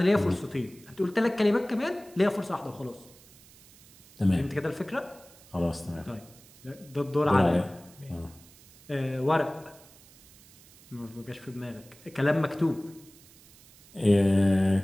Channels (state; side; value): noise; right; hiss, 24 dB below the sound